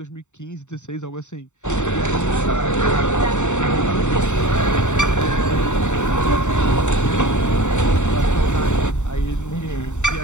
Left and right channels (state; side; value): late; right; 0.84 ms